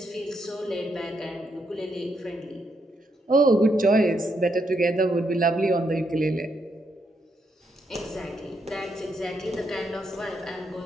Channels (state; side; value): normal; both; correlation 0.78